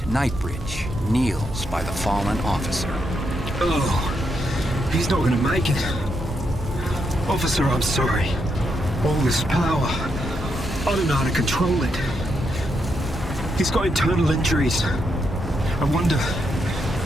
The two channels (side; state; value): both; normal; correlation 0.80